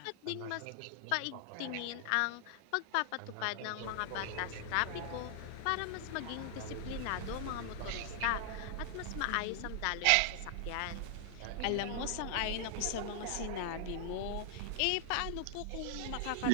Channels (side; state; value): both; different; correlation 0.00